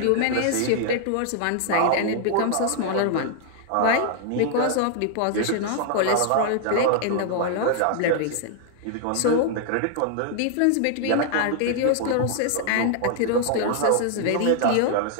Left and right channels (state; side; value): different; both; correlation 0.00